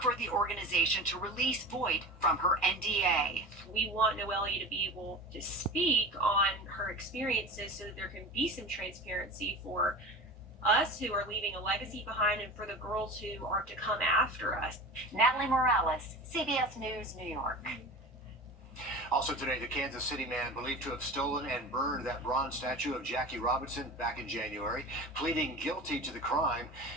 the organization to release Voigt from her NDA. We want Noelia to be able to speak on her experiences so that there can be some transparency for us who are leaving a legacy behind and for the girls who are to come after us. Natalie Morales, CBS News, New York. Also today, the Kansas City man believed to have stolen and burned that bronze statue of Jackie Robinson back in January, pleading guilty to the crime.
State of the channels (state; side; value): normal; both; correlation 0.33